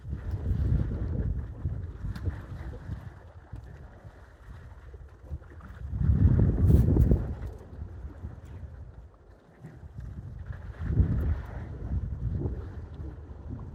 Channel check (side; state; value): both; identical; correlation 1.00